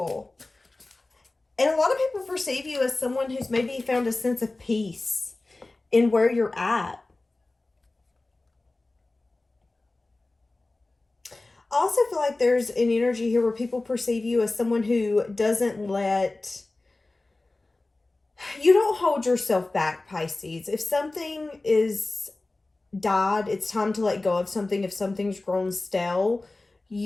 And a lot of people perceive you as someone who's maybe found a sense of peace in where you're at. I also feel like there's an energy here where people perceive you as someone who doesn't let... You don't hold yourself back, Pisces. If something is died, it's time to let go of something. If something's grown stale,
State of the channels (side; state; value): right; quieter; 3.1 dB